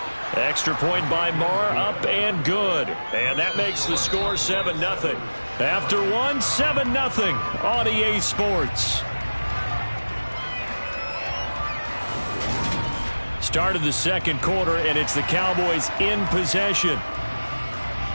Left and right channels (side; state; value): both; inverted; correlation -1.00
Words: Extra point by Marr, up and good. And that makes the score 7-0. After one, 7-0 on EA Sports. Start of the second quarter, and it's the Cowboys in possession.